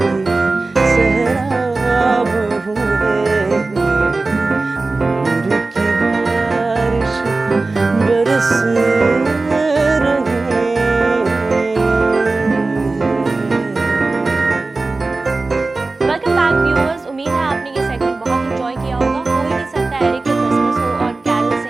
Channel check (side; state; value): left; quieter; 3.5 dB